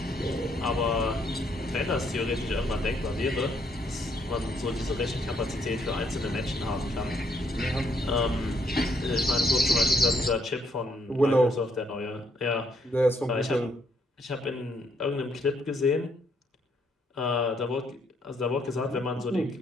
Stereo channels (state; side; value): normal; both; correlation 0.70